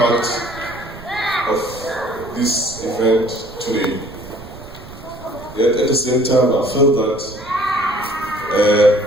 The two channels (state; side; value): noise; right; rumble, 18 dB below the sound